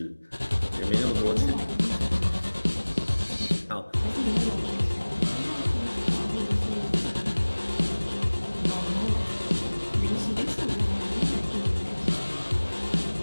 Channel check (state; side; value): inverted; both; correlation -1.00